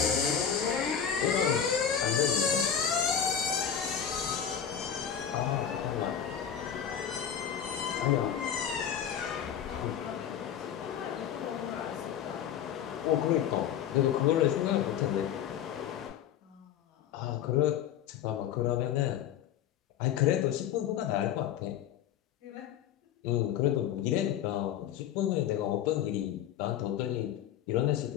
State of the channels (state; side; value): quieter; right; 9.0 dB